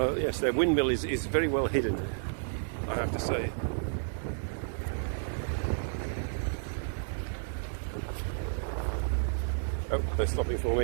yes, their windmill is very well hidden. I have to say. Oh, they're stopping for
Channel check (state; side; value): silent; left; 57 dB below the other